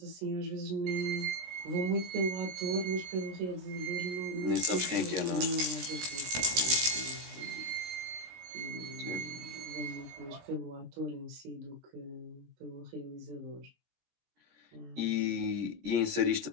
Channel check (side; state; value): left; late; 17 ms